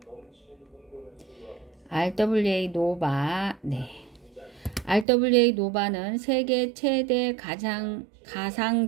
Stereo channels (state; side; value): drops out; left; at 5.1 s